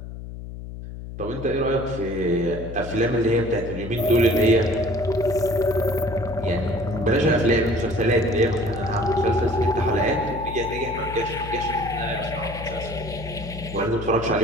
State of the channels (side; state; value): left; noise; hum, 10 dB below the sound